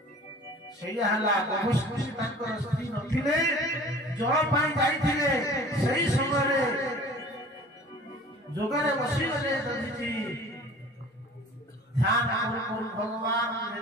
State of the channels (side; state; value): both; normal; correlation 0.45